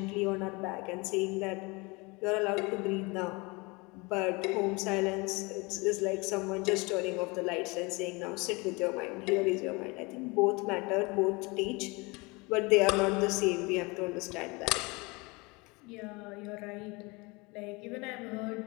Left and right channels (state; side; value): quieter; right; 26.3 dB